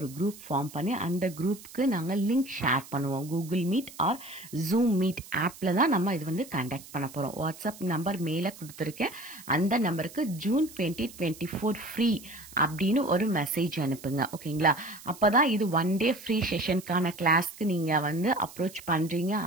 குரூப் ஃபார்ம் பண்ணி அந்த குரூப்புக்கு நாங்கள் லிங்க் ஷேர் பண்ணுவோம். Google Meet or Zoom meet ஆப்பில் தான் நம்ம இது வந்து கண்டக்ட் பண்ண போகிறோம். வாட்ஸ்அப் நம்பர் மேலே கொடுத்துருக்கேன். அந்த நம்பருக்கு ஜூன் 2024 ஃப்ரீ அப்படின்னு ஒரு மெசேஜ் அனுப்புங்க. ஓகேங்களா, அப்போ தான் இது 1 டே ஃப்ரீ செஷனுக்கான கிளாஸ்க்கு நீங்கள் வந்து அப்ரோச் பண்ணுறீங்க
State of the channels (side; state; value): right; noise; hiss, 18 dB below the sound